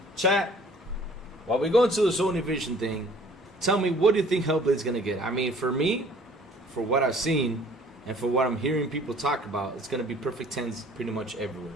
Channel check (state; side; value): normal; both; correlation 0.53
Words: chat, while we go into the Sony Vision thing, tell me, what do you think Hellblade's going to get? I mean, for me, for what I've seen and for what I'm hearing people talk about, it's gonna be perfect 10s pretty much everywhere.